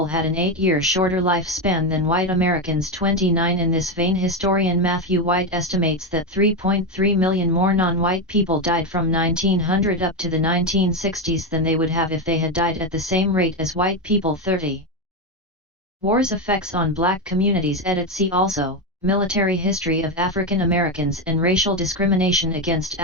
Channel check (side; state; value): both; normal; correlation 0.11